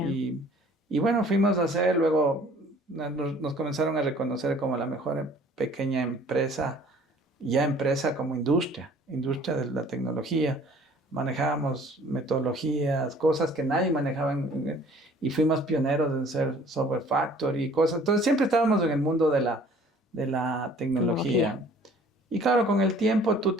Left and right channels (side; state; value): both; normal; correlation 0.53